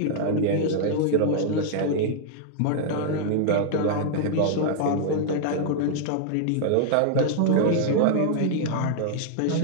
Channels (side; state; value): both; different; correlation -0.01